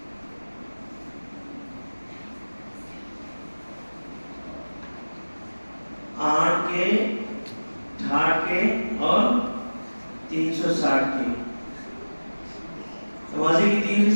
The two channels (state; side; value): inverted; both; correlation -1.00